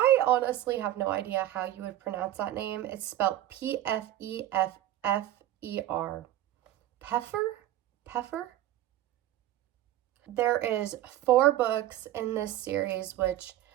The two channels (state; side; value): quieter; left; 13.5 dB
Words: honestly have no idea how you would pronounce that name. It's spelled P-F-E-F-F-E-R. Pfeffer? There is 4 books in this series, which